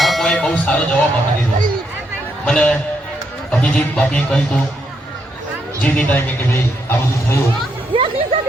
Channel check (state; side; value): normal; both; correlation 0.77